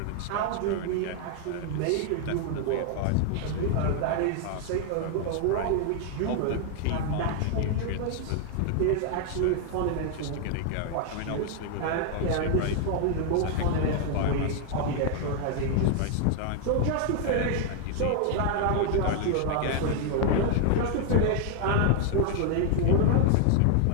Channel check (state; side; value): different; both; correlation 0.00